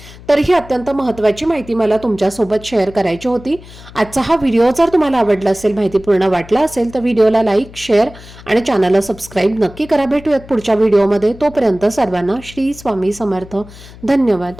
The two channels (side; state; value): left; noise; hum, 19 dB below the sound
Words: तर ही अत्यंत महत्त्वाची माहिती मला तुमच्यासोबत शेअर करायची होती। आजचा हा व्हिडिओ जर तुम्हाला आवडला असेल, माहितीपूर्ण वाटला असेल तर व्हिडिओला लाईक, शेअर आणि चॅनलला सबस्क्राईब नक्की करा। भेटूयात पुढच्या व्हिडिओमध्ये। तोपर्यंत सर्वांना श्री स्वामी समर्थ। धन्यवाद।